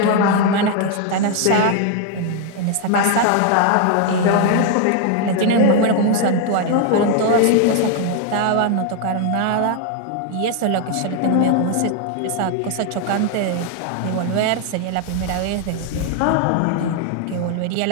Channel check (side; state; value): both; different; correlation 0.01